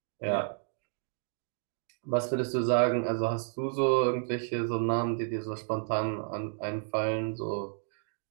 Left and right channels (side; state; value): left; silent; digital silence